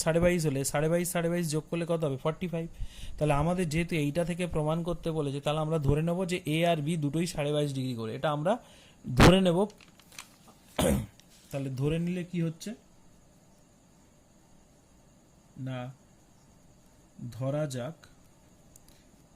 22.5 হলে 22.5 যোগ করলে কত হবে 45। তাহলে আমাদের যেহেতু এইটা থেকে প্রমাণ করতে বলেছে, তাহলে আমরা ধরে নেব যে এ আর বি দুটোই 22.5 ডিগ্রি করে, এটা আমরা ধরে নেব। তাহলে ধরে নিলে কি হচ্ছে না, ধরা যাক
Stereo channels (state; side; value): identical; both; correlation 1.00